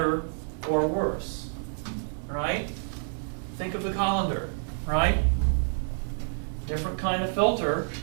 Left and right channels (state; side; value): silent; left; digital silence